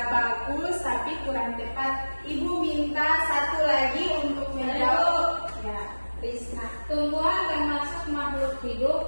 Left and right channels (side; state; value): both; inverted; correlation -1.00